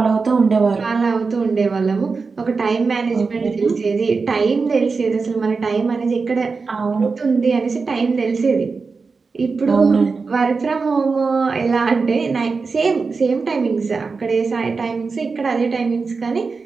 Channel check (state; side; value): quieter; left; 4.6 dB